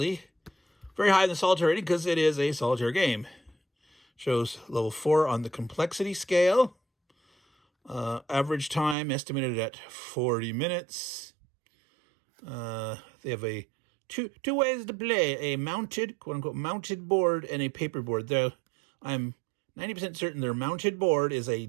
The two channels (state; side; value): drops out; left; at 9.0 s